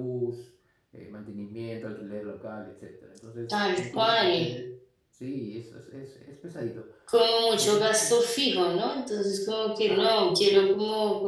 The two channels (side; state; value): both; identical; correlation 1.00